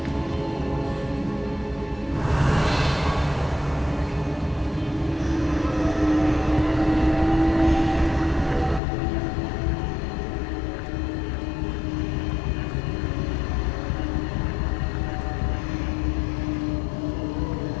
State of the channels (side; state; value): right; drops out; at 8.8 s